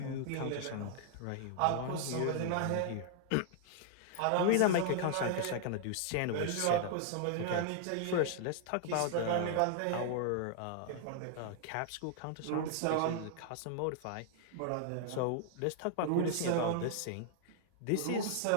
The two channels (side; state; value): both; different; correlation -0.01